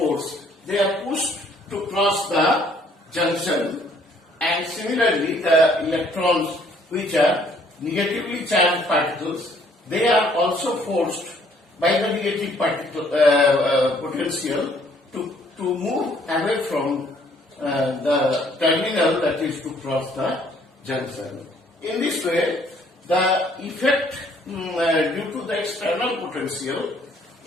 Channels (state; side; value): normal; both; correlation 0.62